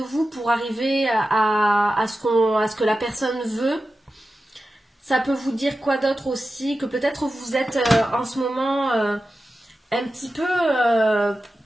pour arriver à ce que la personne veut. Ça peut vous dire quoi d'autre aussi? Que peut-être vous êtes en ce moment un petit peu,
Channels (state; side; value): normal; both; correlation 0.93